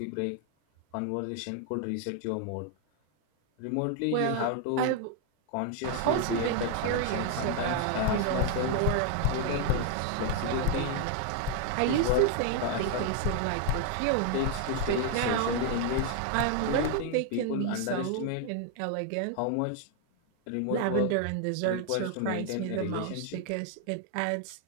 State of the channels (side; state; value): both; different; correlation 0.00